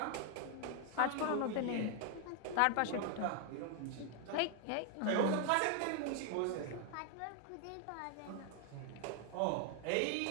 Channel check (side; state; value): both; different; correlation 0.00